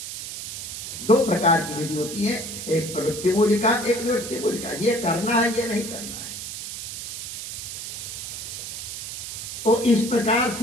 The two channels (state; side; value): noise; right; hiss, 7 dB below the sound